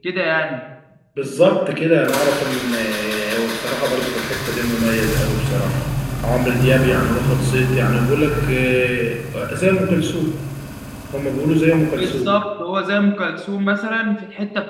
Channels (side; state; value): both; identical; correlation 1.00